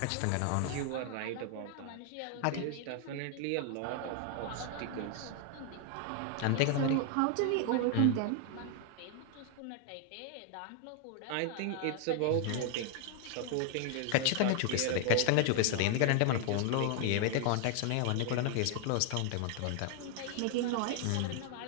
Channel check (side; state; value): both; different; correlation 0.01